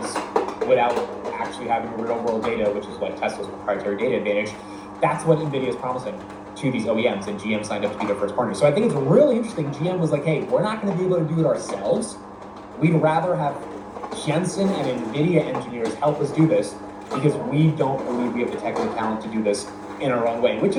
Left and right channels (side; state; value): both; identical; correlation 1.00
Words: without actually having real-world data, which is like Tesla's proprietary data advantage. That's what NVIDIA is promising to these OEMs, and GM signed up to be their first partner. So I think it's really interesting. GM was like, hey, we're not going to be able to do it ourselves. We'd rather have Jensen and NVIDIA engineers help us do this because we don't believe we have the technical talent to do this in our own way, which